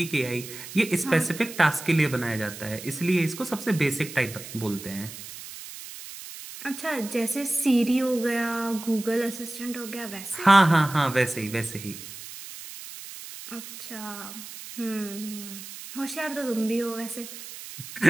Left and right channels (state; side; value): noise; right; hiss, 13 dB below the sound